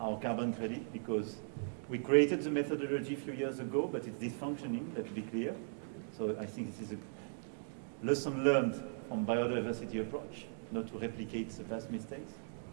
carbon credit, because we created the methodology a few years ago, but it's dysfunctioning, let's be clear. So I think this is a lesson learned from biodiversity approach, not to replicate the past mistakes.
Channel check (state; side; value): silent; left; digital silence